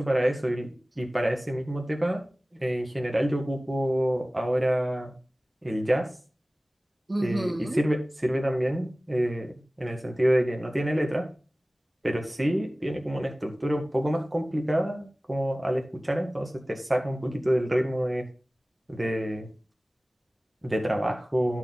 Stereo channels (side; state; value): both; normal; correlation 0.98